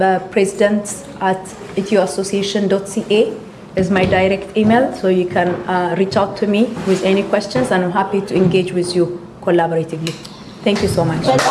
president@ethioassociation.ca is my direct email, so you can reach out to me with any questions and I'm happy to engage with you collaboratively. Thank you so much.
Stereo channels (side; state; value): both; identical; correlation 1.00